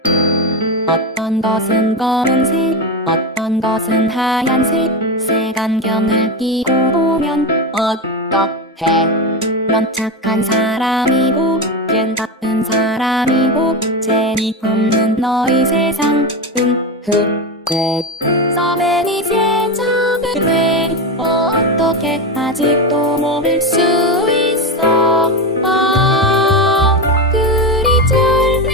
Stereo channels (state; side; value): normal; both; correlation 0.16